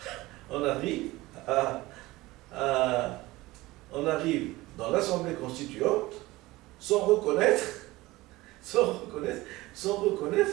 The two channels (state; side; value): quieter; left; 19.4 dB